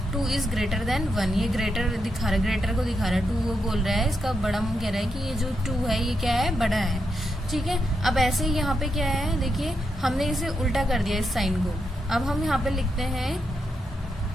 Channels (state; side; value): normal; both; correlation 0.83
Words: 2 इज ग्रेटर देन 1. ये ग्रेटर दिखा रहा है, ग्रेटर को दिखा रहा है, 2 वो बोल रहा है, इसका बड़ा मुंह कह रहा है कि ये जो 2 है ये क्या है, बड़ा है. ठीक है, अब ऐसे ही यहाँ पे क्या है, देखिए हमने इसे उल्टा कर दिया इस साइन को. अब हम यहाँ पे लिखते हैं